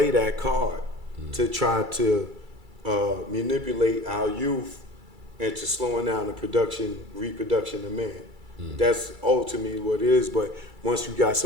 that card to try to manipulate our youth into slowing down the reproduction of man. That's ultimately what it is. But once you got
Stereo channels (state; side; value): late; left; 2.3 ms